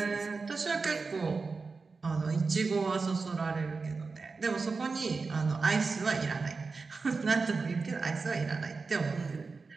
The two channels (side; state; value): left; quieter; 4.3 dB